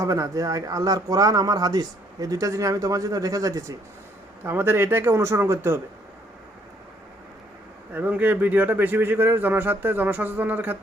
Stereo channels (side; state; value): both; normal; correlation 0.66